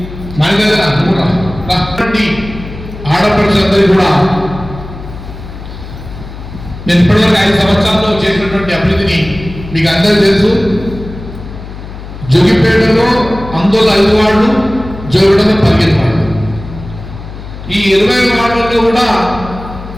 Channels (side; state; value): left; noise; hum, 13 dB below the sound